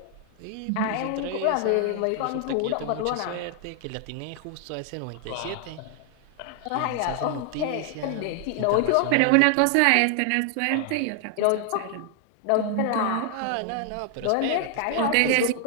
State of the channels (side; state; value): both; different; correlation 0.00